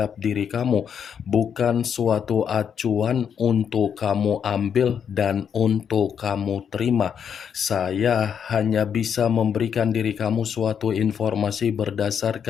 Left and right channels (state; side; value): quieter; right; 7.7 dB